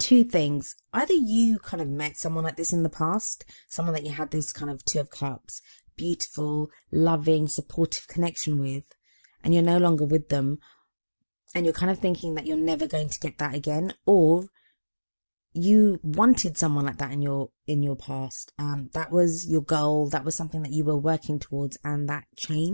things. Either you kind of met someone like this in the past, someone that you had this kind of Two of Cups, beautiful, loving, supportive connection with, and you're no longer with them, and you're kind of thinking that you're never going to get that again, or you wanted someone like that in your past. That was your goal, that was something that you were working towards, and that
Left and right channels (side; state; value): both; inverted; correlation -1.00